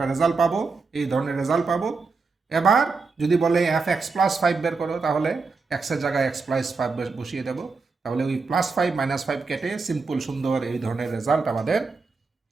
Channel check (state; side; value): quieter; left; 4.4 dB